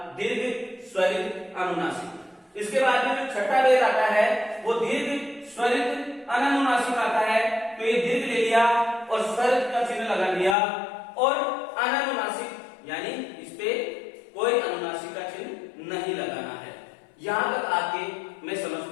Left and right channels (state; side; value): drops out; right; at 10.6 s